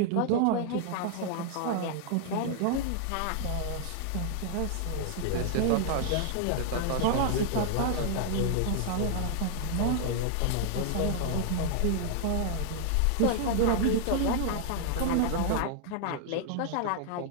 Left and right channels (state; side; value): different; both; correlation 0.00